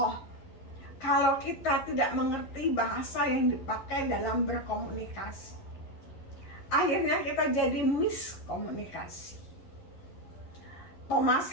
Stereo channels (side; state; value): right; late; 11 ms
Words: kalau kita tidak mengerti bahasa yang dipakai dalam berkomunikasi. Akhirnya kita jadi miskomunikasi. Thomas